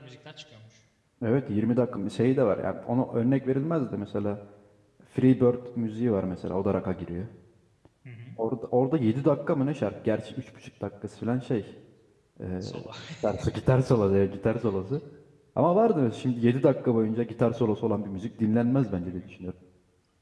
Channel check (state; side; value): identical; both; correlation 1.00